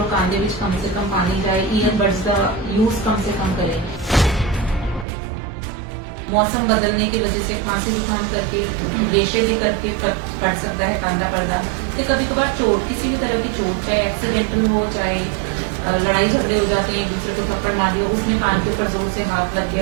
ਕੰਨ ਦੇ ਵਿੱਚ ਕਮ ਸੇ ਕਮ ਪਾਣੀ ਜਾਏ। ईयरबड्स का यूज कम से कम करें। मौसम बदलने की वजह से खांसी जुकाम करके रेशे भी करके पड़ सकता है कान का पर्दा। कि कभी कभार चोट, किसी भी तरह की चोट, चाहे एक्सीडेंटल हो चाहे लड़ाई झगड़े हो जाते हैं, एक दूसरे को थप्पड़ मार दिया, उसमें कान के ऊपर जोर से हाथ लग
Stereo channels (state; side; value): drops out; left; at 5.1 s